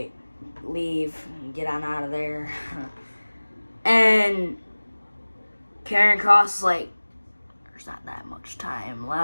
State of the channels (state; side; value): inverted; both; correlation -1.00